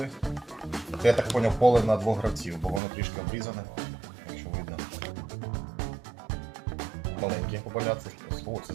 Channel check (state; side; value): drops out; left; at 2.8 s